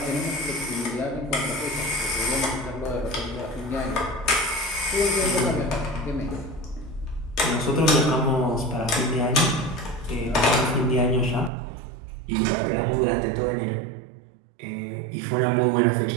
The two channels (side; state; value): left; drops out; at 11.5 s